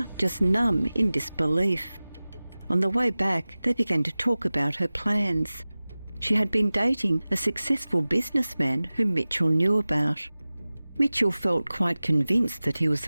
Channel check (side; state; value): both; inverted; correlation -0.98